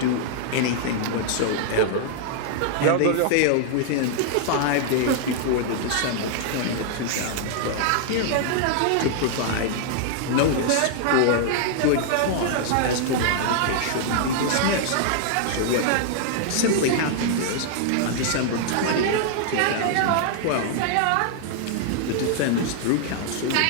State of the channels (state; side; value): different; both; correlation -0.01